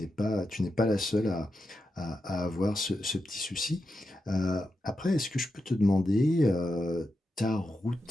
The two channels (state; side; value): normal; both; correlation 0.88